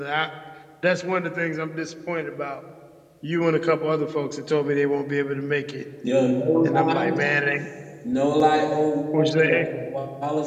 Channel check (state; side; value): identical; both; correlation 1.00